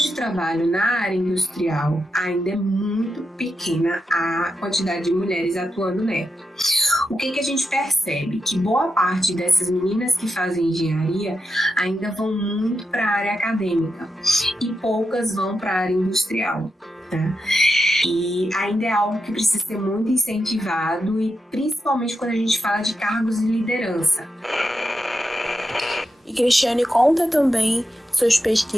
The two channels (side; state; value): both; normal; correlation 0.87